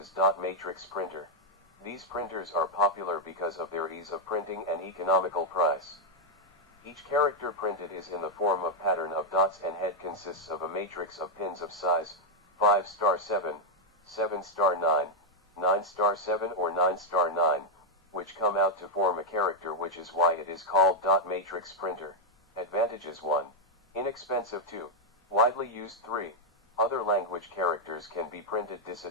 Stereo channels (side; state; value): both; normal; correlation -0.01